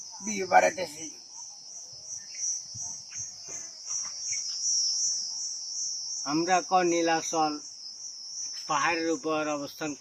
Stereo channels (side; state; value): both; identical; correlation 1.00